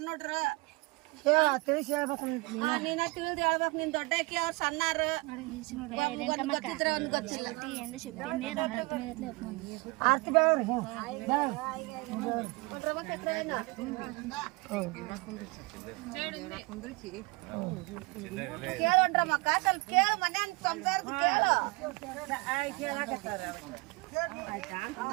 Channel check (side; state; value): left; quieter; 25.6 dB